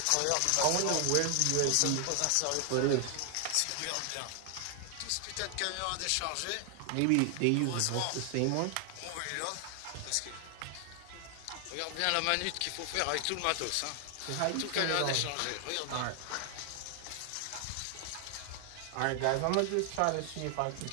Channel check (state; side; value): different; both; correlation 0.00